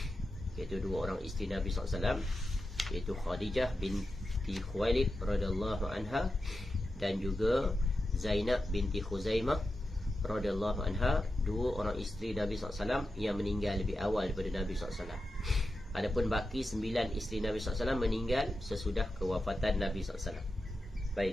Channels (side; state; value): both; normal; correlation 0.90